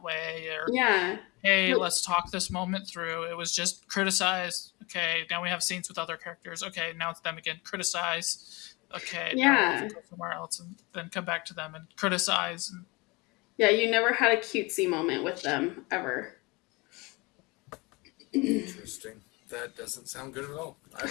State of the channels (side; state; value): right; quieter; 25.4 dB